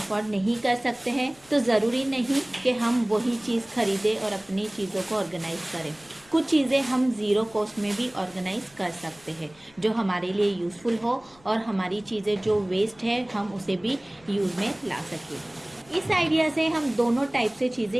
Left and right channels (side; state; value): left; noise; rumble, 28 dB below the sound